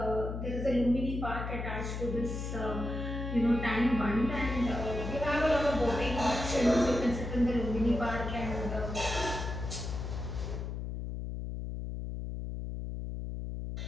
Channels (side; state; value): left; noise; hum, 5 dB below the sound